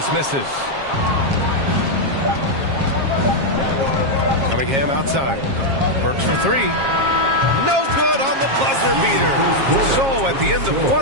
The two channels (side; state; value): left; late; 7.4 ms